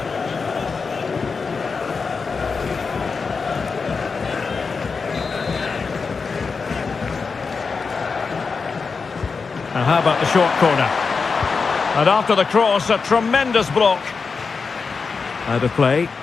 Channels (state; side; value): quieter; right; 4.9 dB